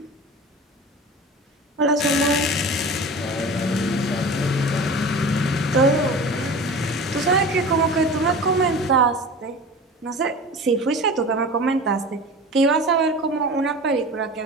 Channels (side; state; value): both; normal; correlation 0.35